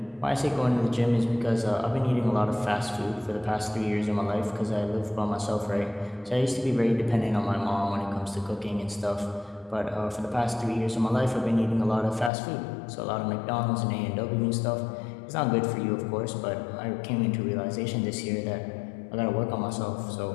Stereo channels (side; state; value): right; drops out; at 12.3 s